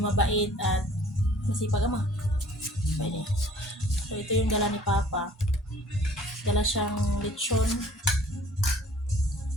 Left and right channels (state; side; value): normal; both; correlation 0.53